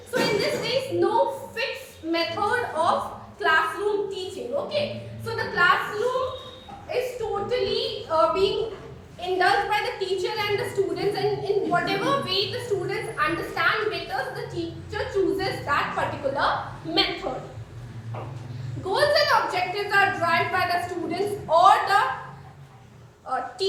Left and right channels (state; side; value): identical; both; correlation 1.00